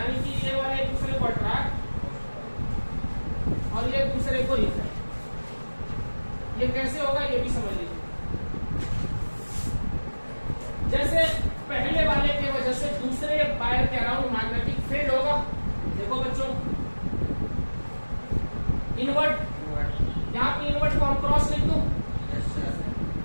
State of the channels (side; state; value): both; inverted; correlation -1.00